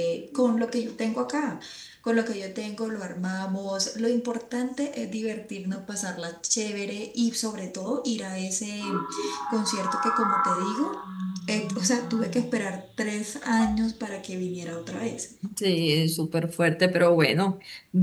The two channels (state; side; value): identical; both; correlation 1.00